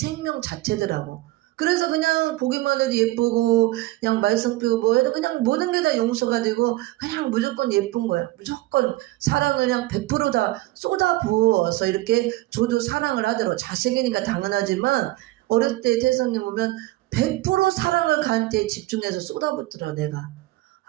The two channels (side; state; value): left; quieter; 18.3 dB